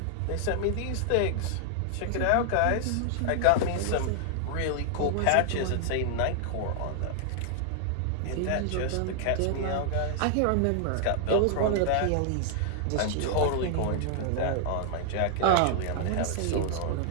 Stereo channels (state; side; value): different; both; correlation 0.00